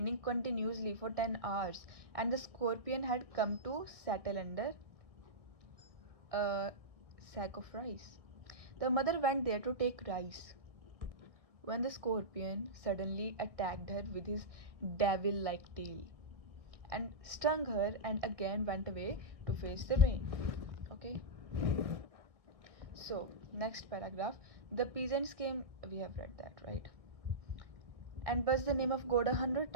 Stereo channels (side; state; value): left; late; 1.7 ms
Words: continuously for 10 hours, and the scorpion had come to settle under a sack of rice. The mother went there to take rice when the scorpion suddenly attacked her with his devil like tail and stung her and again went away to face the rain. Okay, so next paragraph. The peasants came, we have read that, right? And buzzed the name of God 100